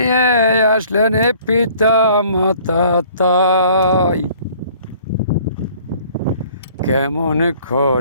আসলেন পিতা মাতা তাই কেমন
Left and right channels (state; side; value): inverted; both; correlation -0.55